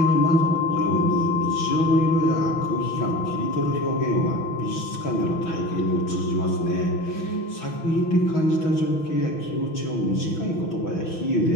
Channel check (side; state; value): right; late; 6.1 ms